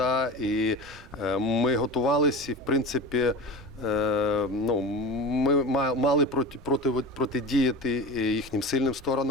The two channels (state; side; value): normal; both; correlation 0.30